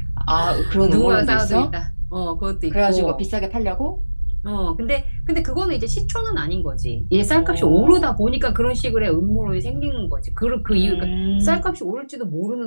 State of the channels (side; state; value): both; inverted; correlation -1.00